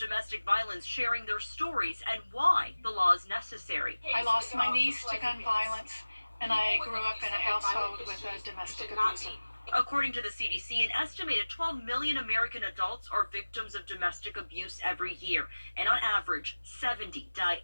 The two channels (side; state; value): both; inverted; correlation -1.00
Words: violence sharing their stories and why the law is necessary. I lost my niece to gun violence, and I grew up in a household with a domestic abuser. According to the CDC, an estimated 12 million American adults are victims of domestic abuse every year, and on average, 70 die